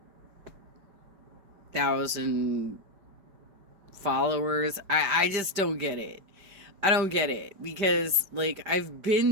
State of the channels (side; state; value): left; late; 5.1 ms